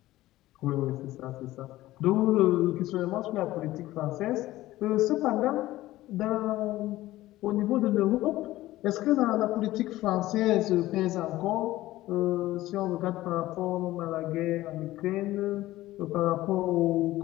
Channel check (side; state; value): right; quieter; 16.3 dB